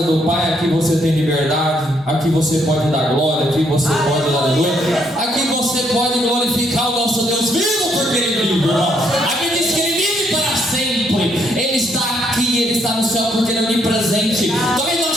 do Pai, aqui você tem liberdade, aqui você pode dar glória, aqui você pode dar aleluia. Aqui você pode glorificar o nosso Deus vivo, porque Ele vive, irmão. Aqui diz que Ele vive para sempre. Ele está aqui, Ele está no céu porque Ele é onipresente. Talvez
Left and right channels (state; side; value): normal; both; correlation 0.72